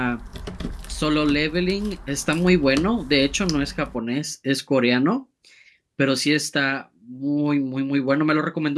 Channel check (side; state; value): both; identical; correlation 1.00